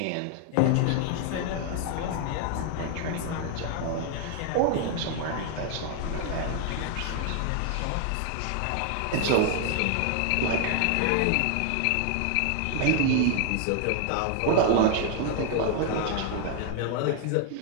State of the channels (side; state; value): both; different; correlation 0.00